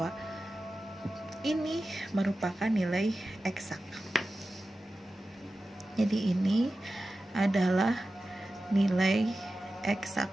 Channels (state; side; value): normal; both; correlation 0.94